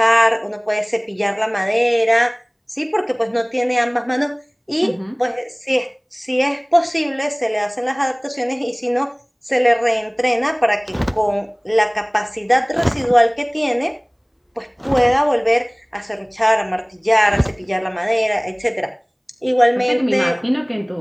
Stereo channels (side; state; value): both; identical; correlation 1.00